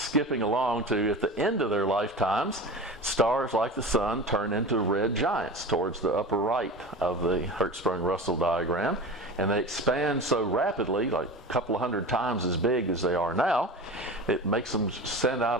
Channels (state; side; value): normal; both; correlation 0.31